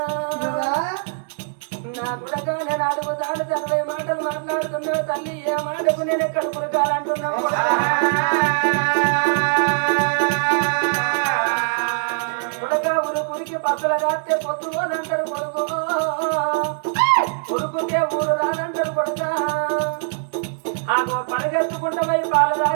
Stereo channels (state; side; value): silent; left; 64 dB below the other